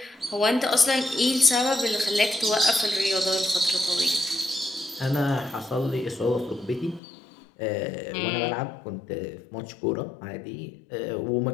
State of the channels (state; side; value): drops out; right; at 7.0 s